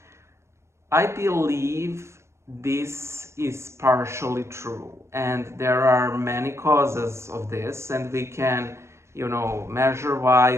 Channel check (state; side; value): late; left; 0.13 ms